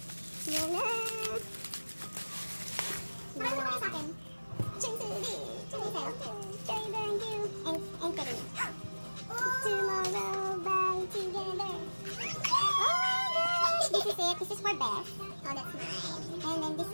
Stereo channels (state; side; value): inverted; both; correlation -1.00